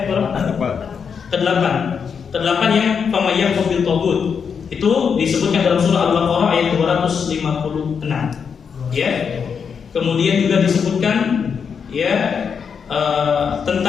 Berapa? Ke-8. Ke-8 yang famayyak bil tagut. Itu disebutkan dalam surah Al-Baqarah ayat 256. Ya. Kemudian juga disebutkan ya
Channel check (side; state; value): right; quieter; 6.5 dB